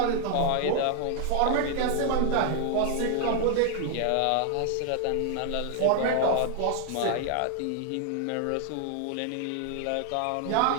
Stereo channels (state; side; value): different; both; correlation 0.00